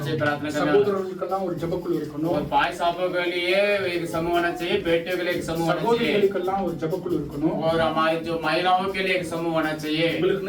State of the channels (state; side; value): identical; both; correlation 1.00